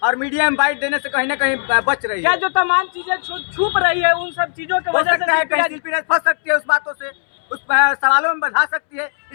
और मीडिया में बाइट देने से कहीं ना कहीं बच रही है। क्या जो तमाम चीजें छुप रही है उन सब चीजों की वजह से कहीं शिल्पी राज फंस सकती है उस बातों से, उस सवालों में बढ़ा सकती है।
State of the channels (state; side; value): silent; right; 67 dB below the other